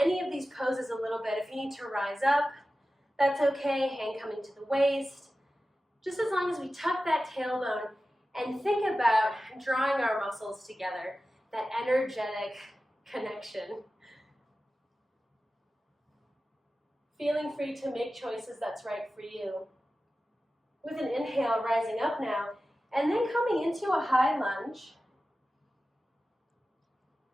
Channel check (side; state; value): both; normal; correlation 0.94